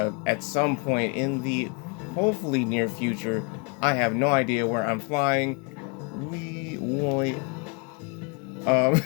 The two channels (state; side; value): quieter; right; 33.4 dB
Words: some point in the hopefully near future. I have no idea where I'm flying. We wait.